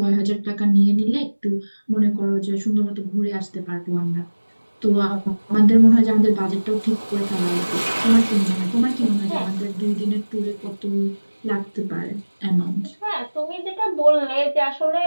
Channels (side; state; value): both; inverted; correlation -1.00